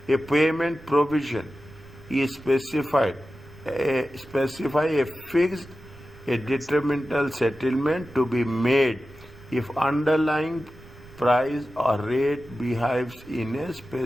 a payment provision is specify a fixed, a detrimental settlement to be made if underlying price or rate behaves in a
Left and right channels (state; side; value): noise; right; rumble, 21 dB below the sound